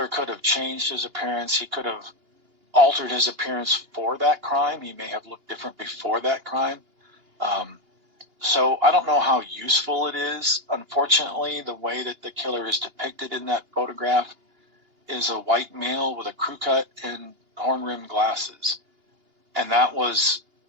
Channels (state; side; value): late; left; 2.8 ms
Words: could have changed his appearance. He could have altered his appearance for that crime. He may have looked different before that crime. So I don't know how useful it is. Unfortunately, the way that the killer is depicted in that photograph is a white male with a crew cut and horn-rimmed glasses. And that was